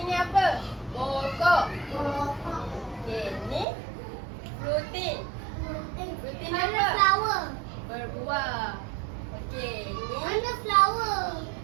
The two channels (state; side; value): drops out; left; at 3.7 s